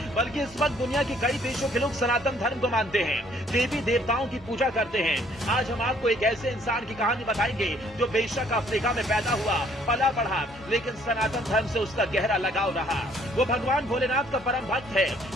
बल्कि इस वक्त दुनिया के कई देशों के लोग सनातन धर्म को मानते हैं, देवी देवताओं की पूजा करते हैं। आज हम आपको एक ऐसे इंसान की कहानी बताएंगे जो बेशक अफ्रीका में पैदा हुआ, पला बढ़ा, लेकिन सनातन धर्म से उसका गहरा लगाव रहा। वो भगवान भोलेनाथ का परम भक्त है,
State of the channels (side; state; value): both; normal; correlation 0.62